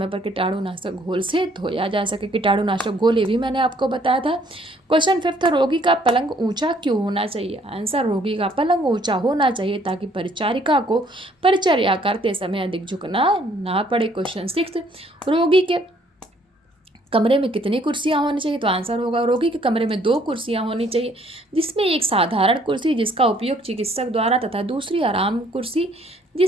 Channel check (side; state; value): both; normal; correlation 0.63